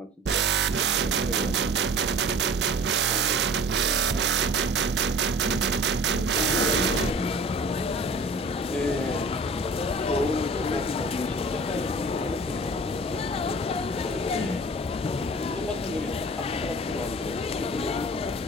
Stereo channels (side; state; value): both; normal; correlation 0.43